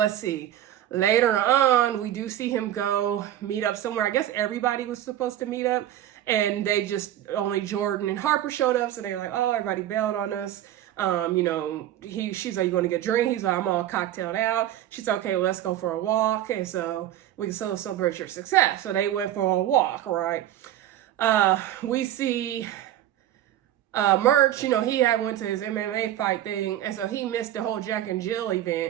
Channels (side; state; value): left; quieter; 12.3 dB